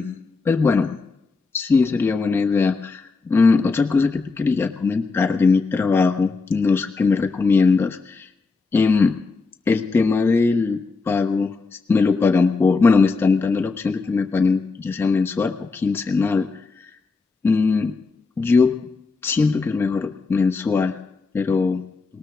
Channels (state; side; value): quieter; right; 4.2 dB